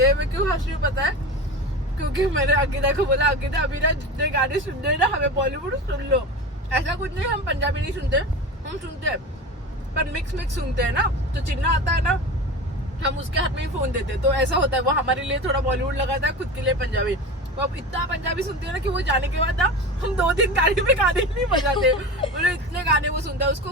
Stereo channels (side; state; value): both; normal; correlation 0.29